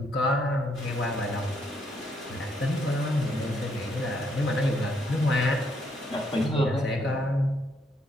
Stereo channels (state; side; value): normal; both; correlation 0.73